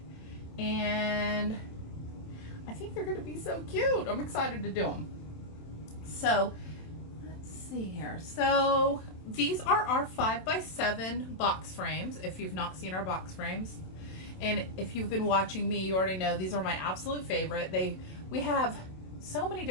and I think they're gonna be so cute. I'm excited to do them. So let's see here. So these are our 5x7 box frames. If you've not seen our box frames, and if you've been watching me, you already know these are my absolute favorite. We have so many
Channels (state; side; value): late; right; 27 ms